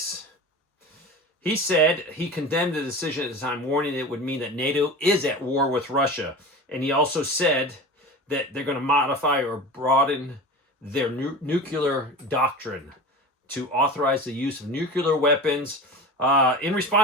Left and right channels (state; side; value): normal; both; correlation 0.32